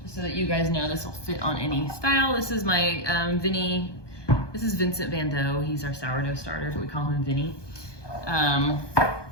just so that you guys know this will fit on any style. This is my this is Vincent Van Dough. He's our sourdough starter, but we call him Vinny.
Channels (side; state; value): right; late; 1.2 ms